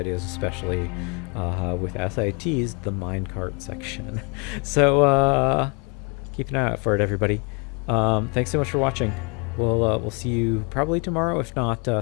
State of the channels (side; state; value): right; quieter; 33.1 dB